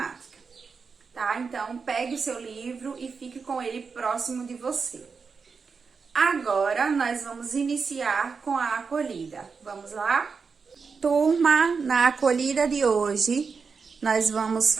Tá? Então, pegue o seu livro e fique com ele próximo de você. Agora, nós vamos iniciar com a acolhida. Vamos lá? Turma, na acolhida de hoje, nós vamos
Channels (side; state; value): left; quieter; 5.2 dB